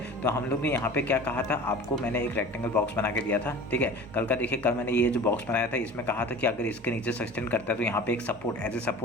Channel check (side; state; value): both; normal; correlation 0.39